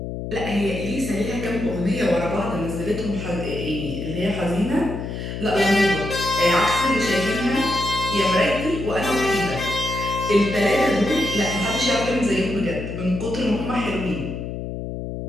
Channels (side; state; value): left; noise; hum, 6 dB below the sound